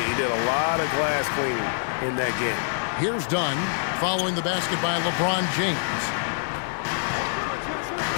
did a lot of glass cleaning in that game. Here's Dunn, following the basket by LeBron James.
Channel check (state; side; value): silent; right; digital silence